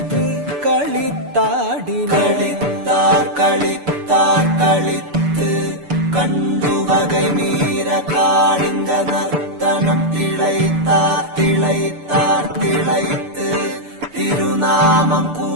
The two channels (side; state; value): left; late; 6.9 ms